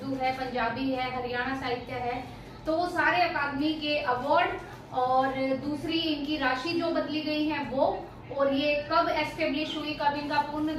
है, पंजाबी है, हरियाणा साहित्य है, तो वो सारे अकादमी के अवार्ड और दूसरी इनकी राशि जो बदली गई है वो, और ये कब एस्टेब्लिश हुई, कब इनका पूर्ण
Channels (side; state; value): both; identical; correlation 1.00